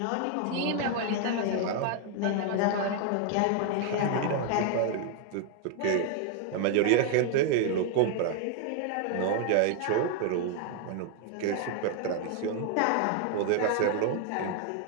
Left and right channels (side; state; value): both; different; correlation 0.00